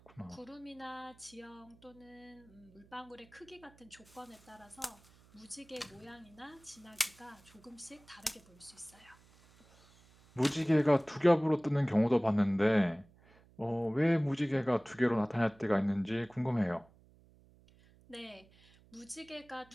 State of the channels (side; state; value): right; noise; hum, 27 dB below the sound